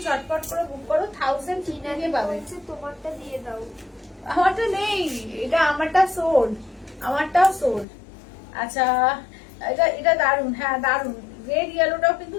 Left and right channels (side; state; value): right; drops out; at 7.9 s